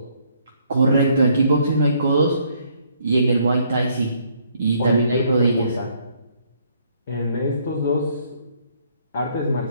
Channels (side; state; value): both; inverted; correlation -0.67